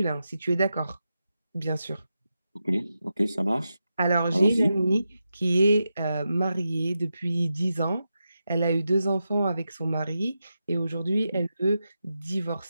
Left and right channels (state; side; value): inverted; both; correlation -0.89